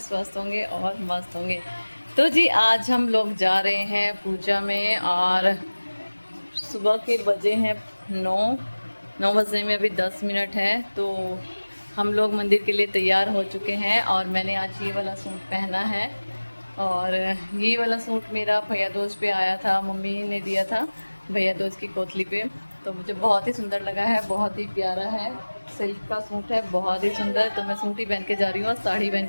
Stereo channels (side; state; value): both; inverted; correlation -1.00